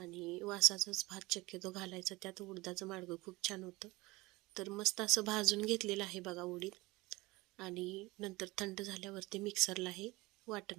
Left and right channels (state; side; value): quieter; left; 21.7 dB